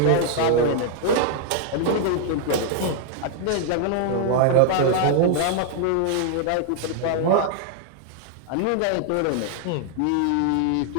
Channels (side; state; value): both; different; correlation 0.00